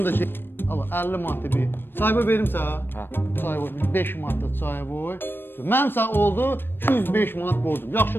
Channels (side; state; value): right; late; 0.098 ms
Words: da şey. Allah 50 manat bir. Çayboy verim sənə. Hə. Çayboy 5 manat çayboy. Mənim sağ oldu 205 manat borcum.